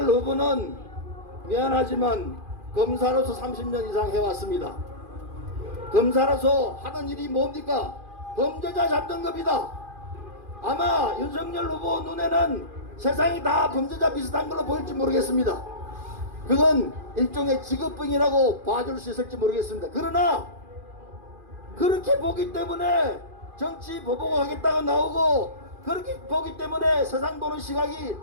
후보는 미안하지만 검사로서 30년 이상 해왔습니다. 검사로서 하는 일이 뭡니까? 범죄자 잡는 겁니다. 아마 윤석열 후보 눈에는 세상이 다 범죄자 비슷한 걸로 보일지 모르겠습니다. 그건 일종의 직업병이라고 봐줄 수 있을지 모르겠습니다. 그러나 그렇게 보기 때문에 정치 보복을 하겠다고 나오고, 그렇게 보기 때문에 세상 보는 시각이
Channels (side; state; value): left; late; 2.4 ms